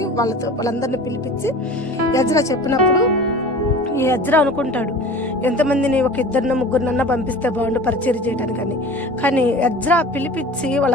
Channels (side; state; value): both; normal; correlation 0.40